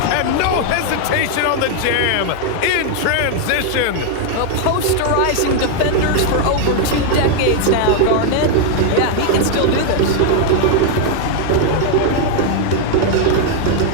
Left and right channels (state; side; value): different; both; correlation 0.00